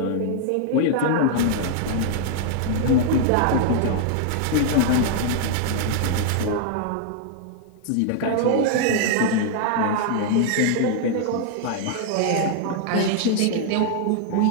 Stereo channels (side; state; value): both; different; correlation 0.00